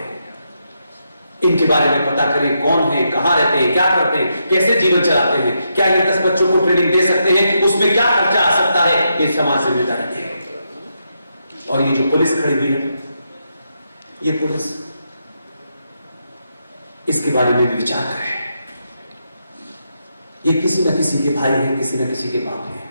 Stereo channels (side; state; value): both; inverted; correlation -0.82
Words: इनके बारे में पता करें, कौन है, कहां रहते हैं, क्या करते हैं, कैसे जीवन चलाते हैं, क्या ये 10 बच्चों को ट्रेनिंग दे सकते हैं, उसमें क्या खर्चा आ सकता है, ये समाज जिम्मेदारी है। और ये जो पुलिस खड़ी हुई है, ये पुलिस, इसके बारे में भी विचार करें। ये किसी न किसी के भाई हैं, किसी न किसी के बाप हैं,